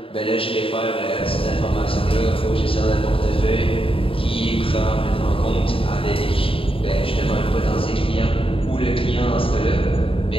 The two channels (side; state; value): right; late; 0.26 ms